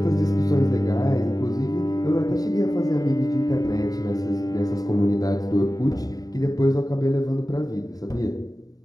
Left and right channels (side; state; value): right; late; 0.18 ms